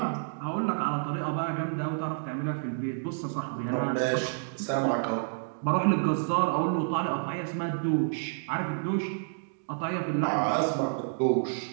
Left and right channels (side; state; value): left; silent; digital silence